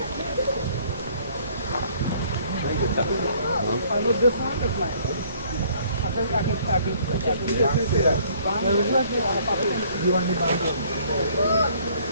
I know this one is mine. I can say that. You want the band?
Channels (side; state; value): both; inverted; correlation -0.59